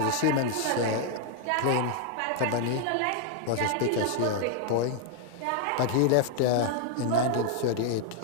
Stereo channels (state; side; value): different; both; correlation 0.00